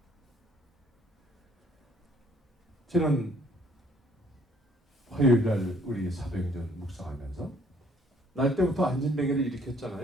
지난 화요일 날 우리 사도행전 묵상하면서 날 때부터 안진뱅이를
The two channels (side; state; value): both; normal; correlation 0.61